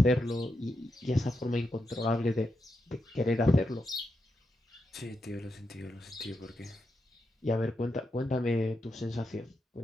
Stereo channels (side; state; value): both; normal; correlation 0.85